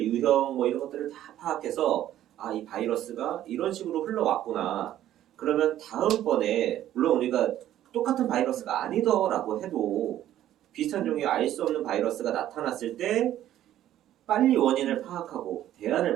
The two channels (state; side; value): quieter; left; 12.4 dB